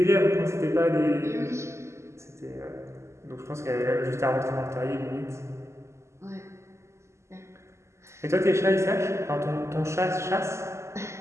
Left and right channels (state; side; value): late; left; 0.13 ms